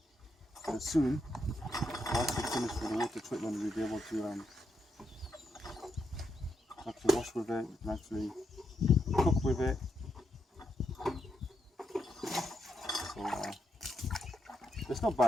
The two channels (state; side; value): normal; both; correlation 0.81